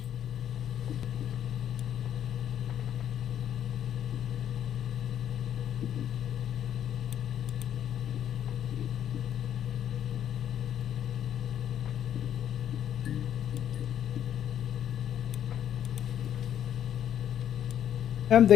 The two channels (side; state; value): right; quieter; 10.1 dB